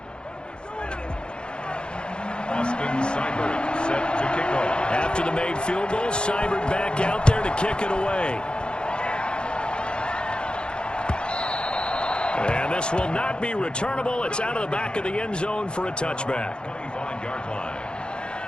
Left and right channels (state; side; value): late; right; 0.051 ms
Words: Austin Seibert set to kick off. After the made field goal, Seibert back out there to kick it away. And this will not be returnable. It's out of the back of the end zone for a touchback. 25-yard line.